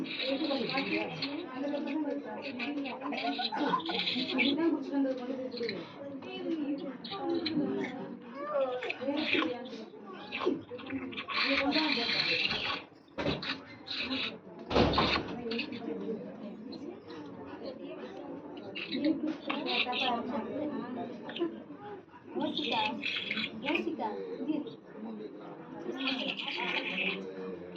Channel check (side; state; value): both; identical; correlation 1.00